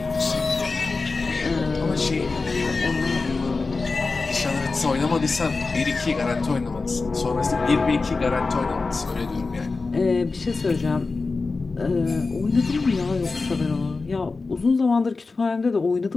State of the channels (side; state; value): right; quieter; 4.0 dB